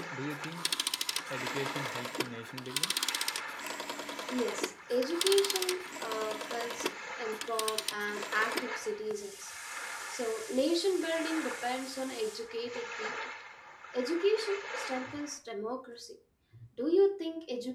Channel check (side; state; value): both; identical; correlation 1.00